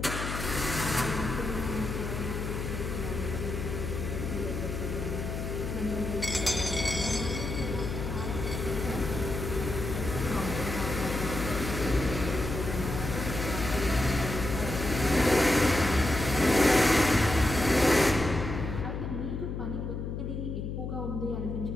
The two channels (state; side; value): noise; left; hum, 4 dB below the sound